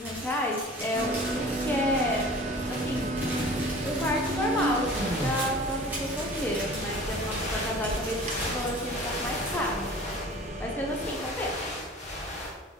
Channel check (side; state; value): both; normal; correlation 0.43